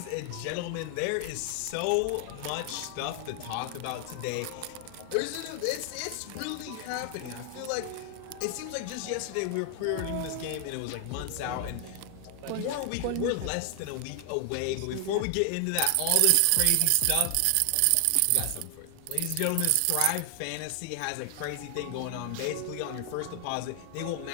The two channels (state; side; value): different; both; correlation 0.00